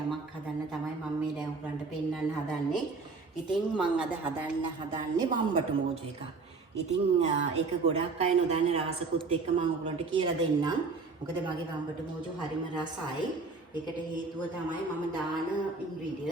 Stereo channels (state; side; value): quieter; left; 4.2 dB